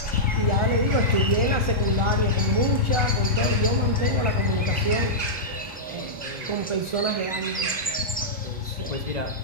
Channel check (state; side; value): normal; both; correlation -0.11